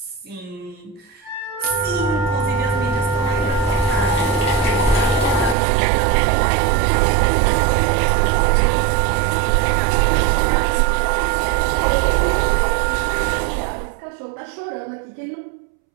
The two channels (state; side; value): drops out; left; at 5.6 s